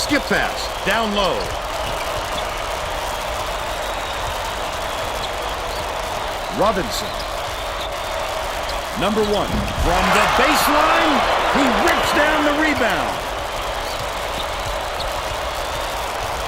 pass. Down low. Robinson. Number 1. From the baseline, he rips down the rebound.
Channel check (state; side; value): identical; both; correlation 1.00